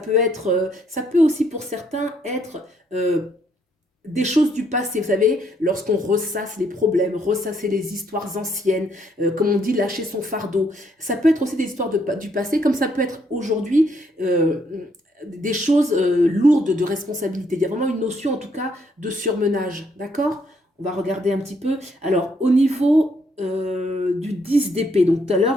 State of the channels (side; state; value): both; normal; correlation 0.71